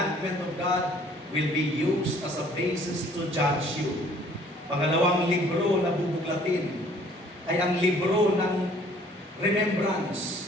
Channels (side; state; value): both; normal; correlation 0.57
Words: of God will be used as a basis to judge you. Pangalawang libro na bubuklatin ay ang libro ng